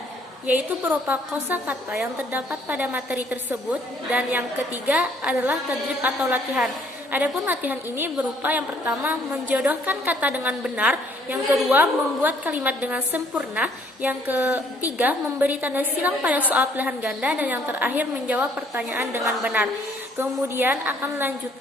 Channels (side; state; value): both; normal; correlation 0.63